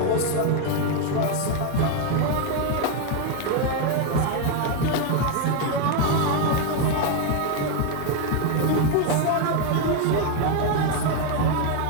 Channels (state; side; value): different; both; correlation 0.01